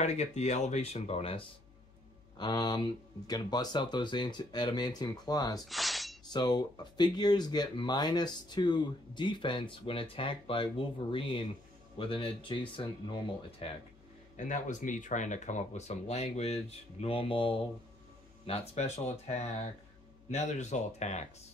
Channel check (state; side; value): noise; left; hum, 26 dB below the sound